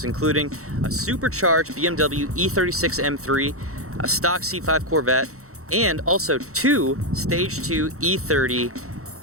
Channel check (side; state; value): left; late; 0.64 ms